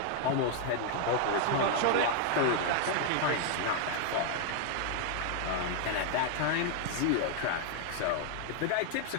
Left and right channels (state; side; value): different; both; correlation 0.00